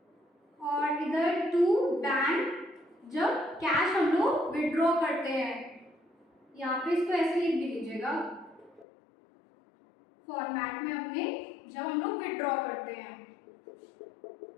और इधर टू बैंक जब कैश हम लोग विड्रॉ करते हैं। यहाँ पे इसको ऐसे लिख भी लीजिएगा फॉर्मेट में अपने, जब हम लोग विड्रॉ करते हैं।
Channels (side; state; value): right; drops out; at 8.8 s